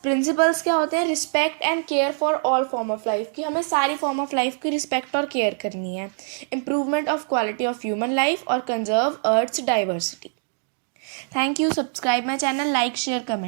प्रिंसिपल्स क्या होते हैं? Respect and care for all form of life, कि हमें सारी फॉर्म ऑफ लाइफ की रिस्पेक्ट और केयर करनी है। Improvement of quality of human life और conserve earth's diversity. Thank you. Subscribe my channel, like, share,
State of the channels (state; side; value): silent; left; 63 dB below the other